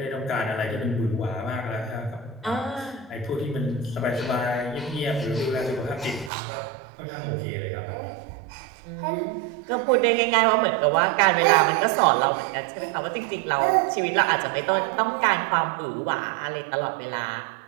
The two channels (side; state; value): left; drops out; at 6.3 s